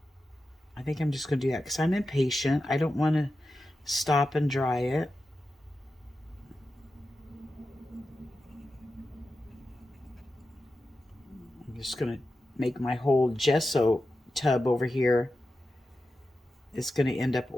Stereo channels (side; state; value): both; normal; correlation 0.91